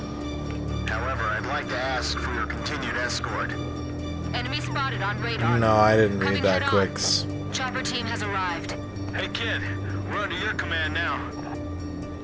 However, I'd like to ask for your continued escort. Enemy spotted on radar. No, I didn't read that quicks. Chopper team has arrived. Hey kid, we're under your command now.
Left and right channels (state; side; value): identical; both; correlation 1.00